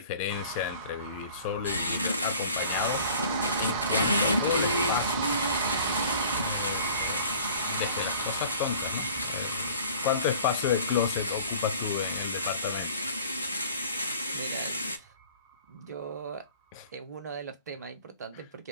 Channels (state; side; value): inverted; both; correlation -0.48